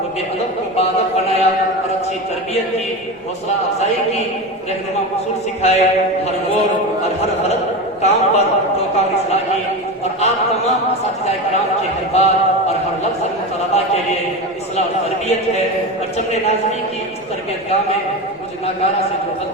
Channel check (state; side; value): normal; both; correlation 0.22